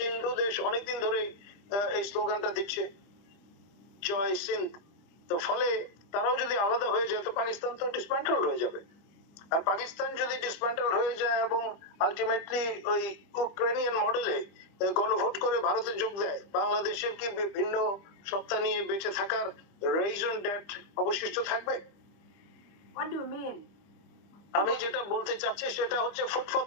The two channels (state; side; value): late; right; 25 ms